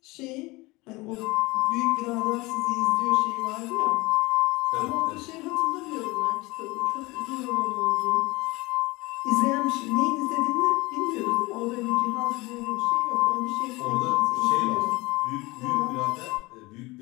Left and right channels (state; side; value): quieter; right; 22.6 dB